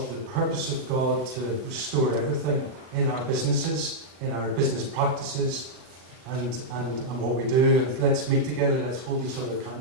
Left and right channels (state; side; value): late; left; 39 ms